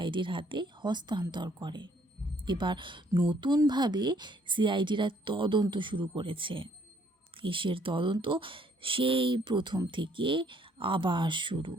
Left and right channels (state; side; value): normal; both; correlation 0.65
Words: হাতে হস্তান্তর করে। এবার নতুনভাবে সিআইডিরা তদন্ত শুরু করেছে। কেসের তদন্ত সেই প্রথম থেকে আবার শুরু।